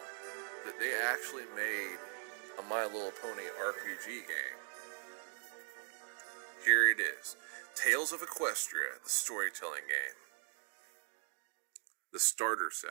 that they actually made a My Little Pony RPG game? Here it is. Tales of Equestria, the storytelling game. The starter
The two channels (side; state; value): left; silent; 51 dB below the other